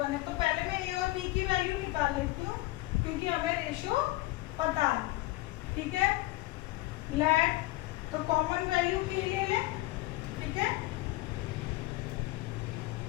है, तो पहले मैं ए और बी की वैल्यू निकाल लेती हूँ क्योंकि हमें रेशो पता है। ठीक है, लेट तो कॉमन वैल्यू के लिए ले। ठीक है,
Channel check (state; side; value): quieter; right; 18.9 dB